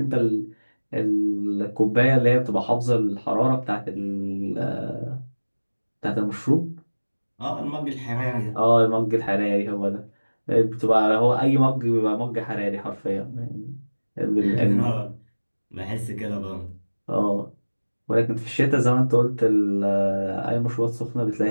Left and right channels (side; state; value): both; inverted; correlation -1.00